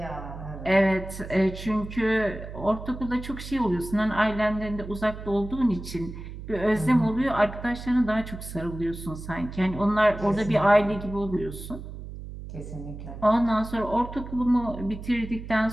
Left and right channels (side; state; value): right; noise; hum, 11 dB below the sound